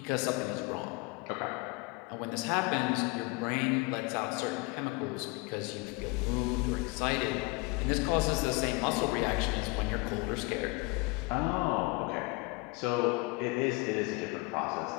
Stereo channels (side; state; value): right; quieter; 26.6 dB